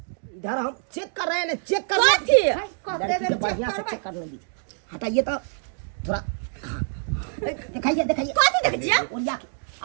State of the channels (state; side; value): silent; left; 62 dB below the other